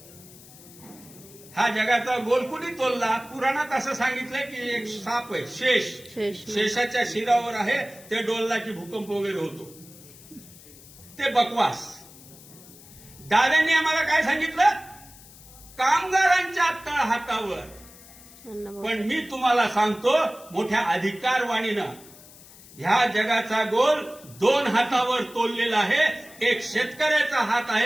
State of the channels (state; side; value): noise; left; hiss, 21 dB below the sound